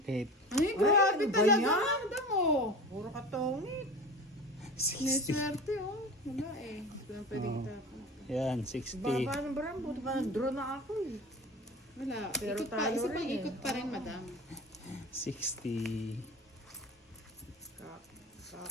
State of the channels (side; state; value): both; normal; correlation 0.34